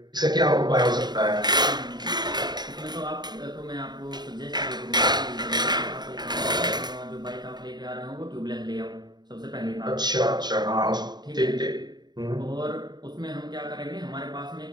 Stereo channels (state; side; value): late; left; 0.20 ms